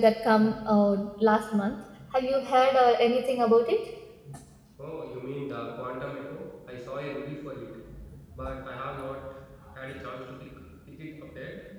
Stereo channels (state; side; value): identical; both; correlation 1.00